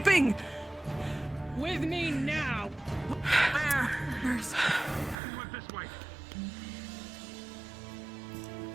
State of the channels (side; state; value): left; drops out; at 5.2 s